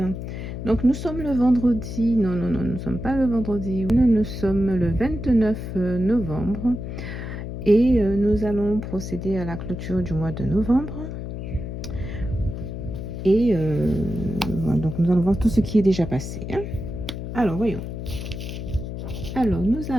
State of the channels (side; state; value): left; noise; hum, 7 dB below the sound